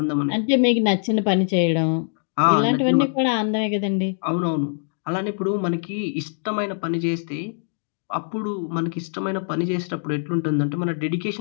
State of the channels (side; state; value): right; silent; digital silence